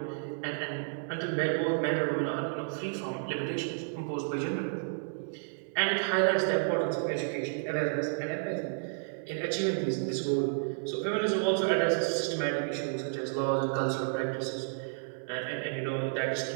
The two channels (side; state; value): left; silent; 57 dB below the other